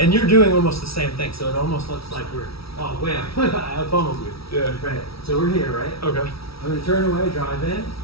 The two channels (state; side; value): late; right; 0.76 ms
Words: you're doing almost the same thing, so it almost looks like we're, oh, wham, I pummeled you. Yeah. Right. So we're here, right? Okay. I'm gonna turn away, drive in,